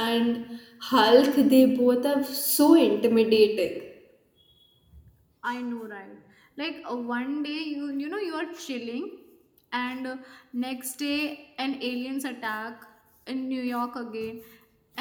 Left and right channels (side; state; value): both; identical; correlation 1.00